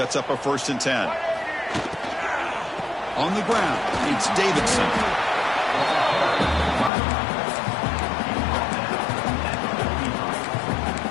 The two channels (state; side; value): drops out; right; at 6.9 s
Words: up a 1st and 10. On the ground, it's Davidson.